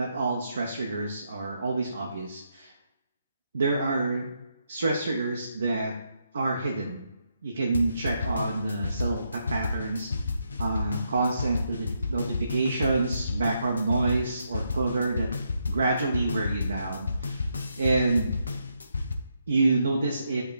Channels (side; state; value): both; inverted; correlation -0.79